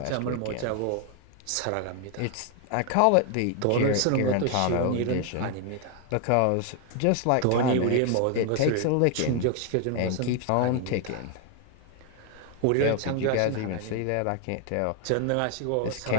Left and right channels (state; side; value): different; both; correlation 0.00